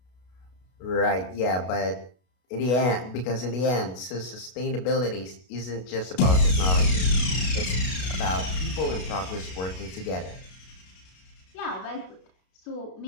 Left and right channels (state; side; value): late; right; 32 ms